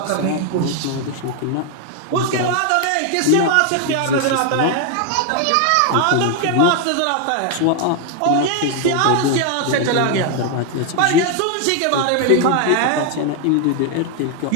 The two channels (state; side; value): different; both; correlation 0.01